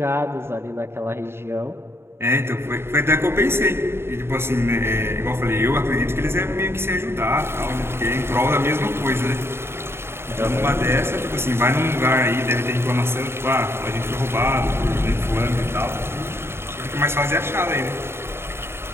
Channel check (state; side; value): late; left; 0.12 ms